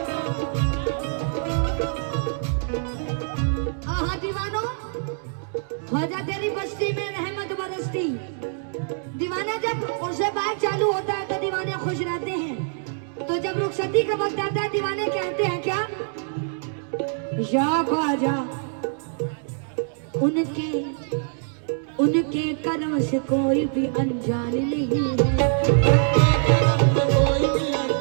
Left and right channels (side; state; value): left; silent; digital silence